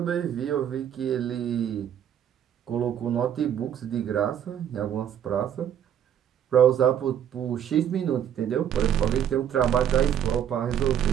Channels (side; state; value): left; quieter; 9.5 dB